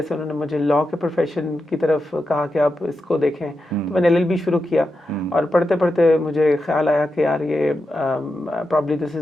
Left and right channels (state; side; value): normal; both; correlation 0.88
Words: से उन्होंने मुझे लॉ के प्रोफेशन की तरफ कहा कि आप इसको देखें। तो मैंने एलएलबी शुरू किया। और पढ़ते पढ़ते मुझे ख्याल आया कि यार ये probably this